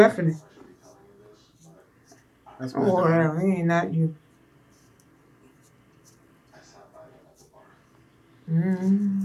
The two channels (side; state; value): both; identical; correlation 1.00